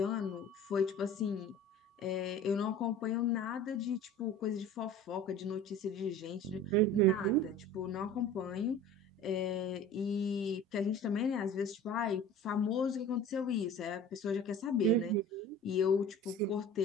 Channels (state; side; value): normal; both; correlation 0.41